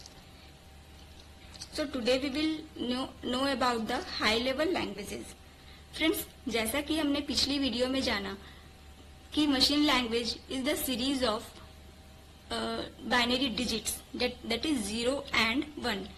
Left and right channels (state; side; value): identical; both; correlation 1.00